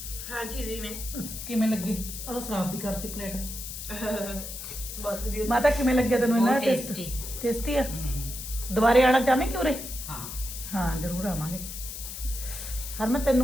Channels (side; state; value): left; noise; hiss, 8 dB below the sound